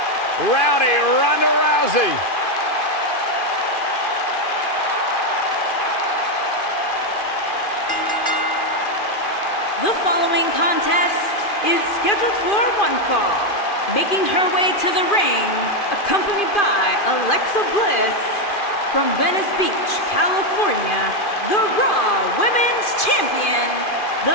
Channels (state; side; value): late; right; 2.4 ms